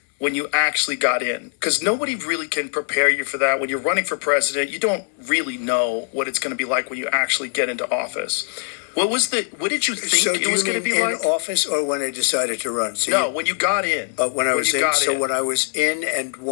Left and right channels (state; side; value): silent; right; digital silence